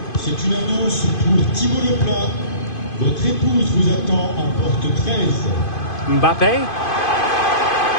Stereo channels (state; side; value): late; right; 2.5 ms